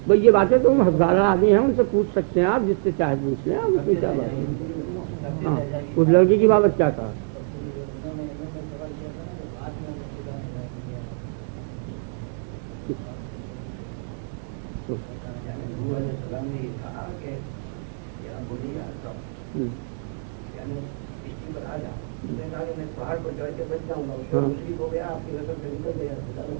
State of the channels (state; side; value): silent; left; digital silence